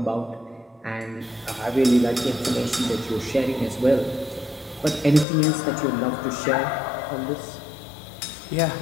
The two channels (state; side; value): drops out; right; at 5.2 s